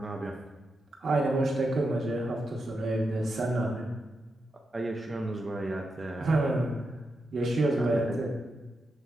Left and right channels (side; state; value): both; normal; correlation 0.86